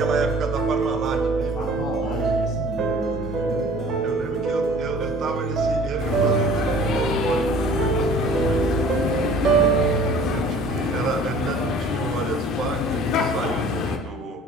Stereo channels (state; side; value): normal; both; correlation 0.49